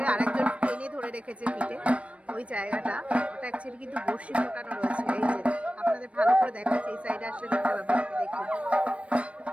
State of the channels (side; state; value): left; late; 0.063 ms